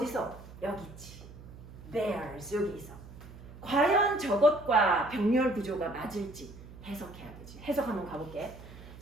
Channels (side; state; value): right; noise; hum, 16 dB below the sound